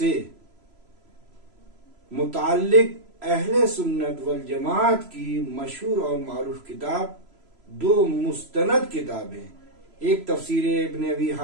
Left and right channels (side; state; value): left; late; 3.0 ms